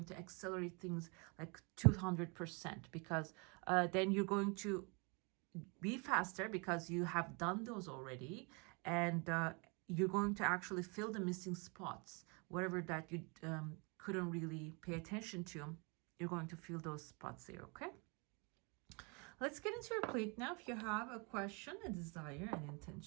to accelerate things like 200%, because then you're going to be faster because you have done those already, and you're going to actually fill the missing spots, whatever that you couldn't really pay attention to. You're going to fill those spots there. Okay, let's get into your plate now. If you have a question, a desire, an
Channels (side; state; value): left; quieter; 32.0 dB